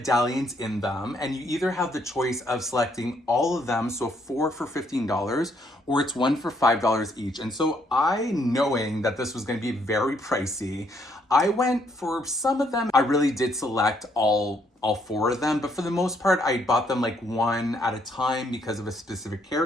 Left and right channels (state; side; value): normal; both; correlation 0.70